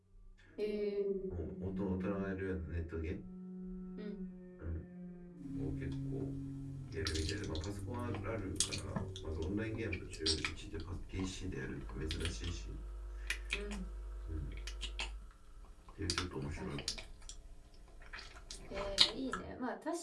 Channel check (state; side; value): identical; both; correlation 1.00